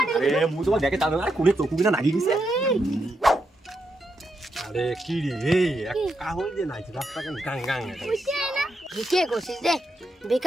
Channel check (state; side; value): normal; both; correlation 0.82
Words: আরে মুই তোমার দেখে চান্দা আরে কোনে চকু কিনা নাগি গেছে আরে কি রে এই কাহল যে নাই রাস্তা কেন গাং গাং কে করছিস রে